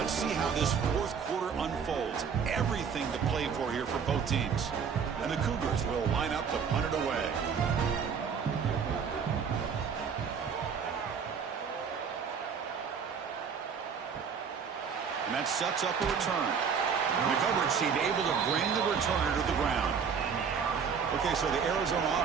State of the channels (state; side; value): quieter; left; 6.5 dB